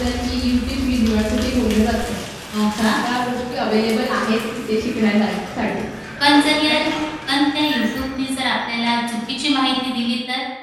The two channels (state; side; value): identical; both; correlation 1.00